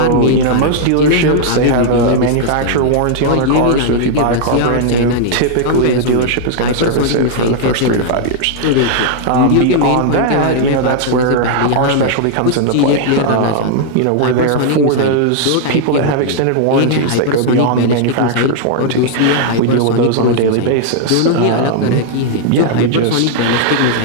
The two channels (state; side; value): different; both; correlation -0.01